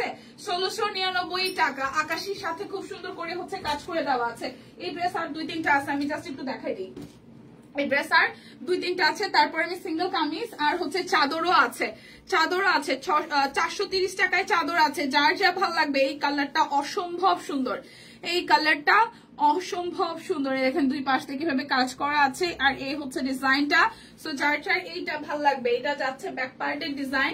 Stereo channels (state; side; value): identical; both; correlation 1.00